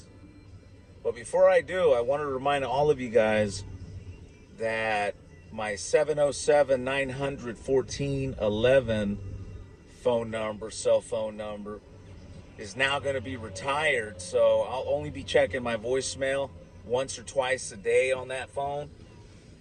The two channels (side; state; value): both; identical; correlation 1.00